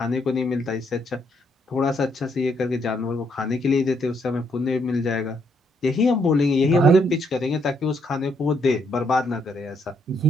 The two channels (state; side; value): normal; both; correlation 0.73